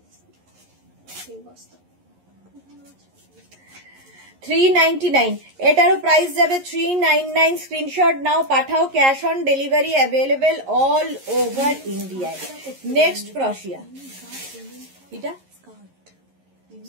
বস্তা, 3 বস্তা। 399, এটারও প্রাইস যাবে 399। স্ক্রিনশট নাও, পাঠাও, cash on delivery available all over ইন্ডিয়ায়। নেক্সট ক্রশিয়া, এটা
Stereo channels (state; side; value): late; left; 11 ms